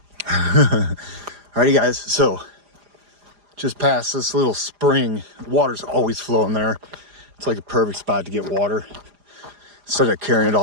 Alrighty guys, so just past this little spring, water's always flowing there. It's like a perfect spot to get water. Instead of carrying it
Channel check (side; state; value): left; late; 4.9 ms